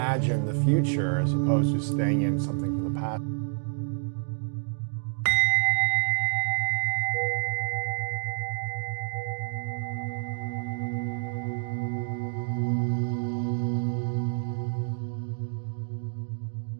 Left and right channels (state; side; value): silent; left; digital silence